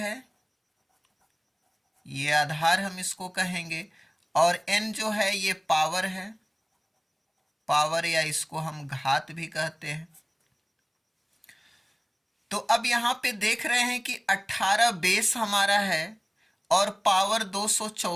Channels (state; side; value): identical; both; correlation 1.00